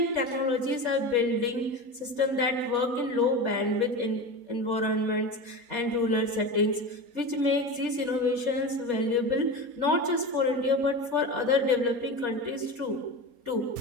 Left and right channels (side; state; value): left; late; 4.2 ms